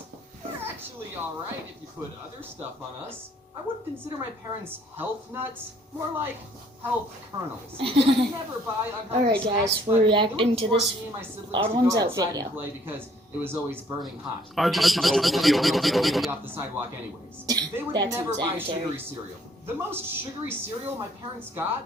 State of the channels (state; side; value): normal; both; correlation 0.63